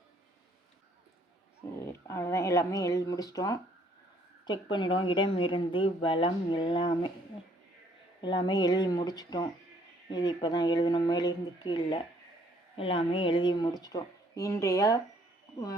சரி, அவ்வளோதான். எல்லாமே எழுதி முடிச்சிட்டோம். செக் பண்ணிவிடுவோம். இடம் இருந்து பலம் எல்லாமே எழுதி முடிச்சிட்டோம். இது இப்போ தான் எழுதணும். மேலிருந்து கீழே எல்லாமே எழுதி முடிச்சிட்டோம். இன்றைய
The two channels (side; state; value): both; normal; correlation 0.64